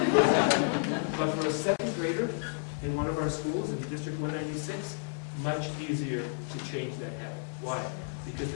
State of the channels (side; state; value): right; silent; 57 dB below the other